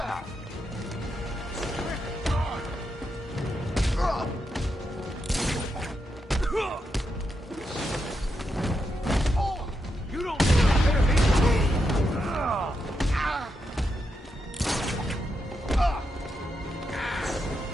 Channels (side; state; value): both; normal; correlation 0.84